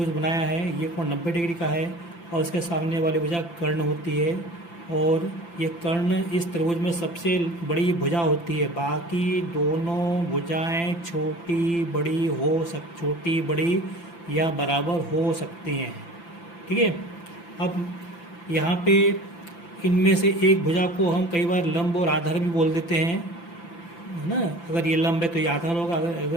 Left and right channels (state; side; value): late; right; 5.9 ms